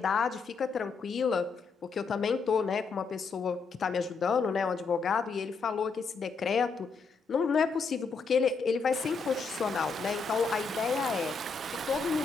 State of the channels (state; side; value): quieter; right; 4.8 dB